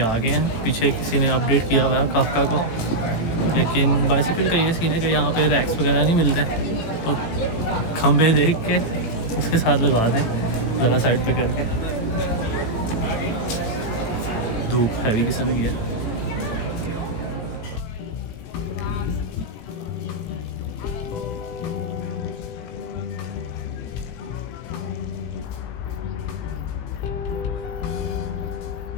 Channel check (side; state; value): right; late; 18 ms